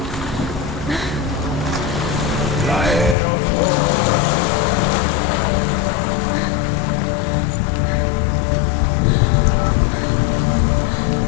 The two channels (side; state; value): right; drops out; at 3.2 s